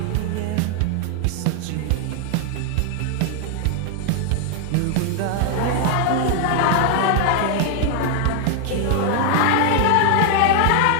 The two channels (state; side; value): different; both; correlation 0.00